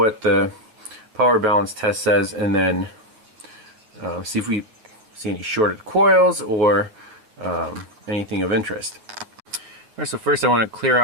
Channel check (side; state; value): left; late; 9.2 ms